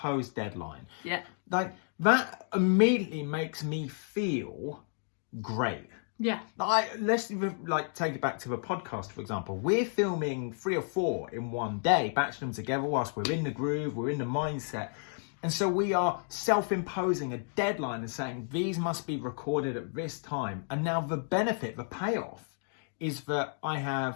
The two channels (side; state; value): right; silent; 57 dB below the other